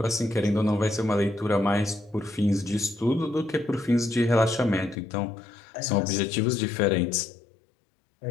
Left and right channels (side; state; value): right; drops out; at 5.0 s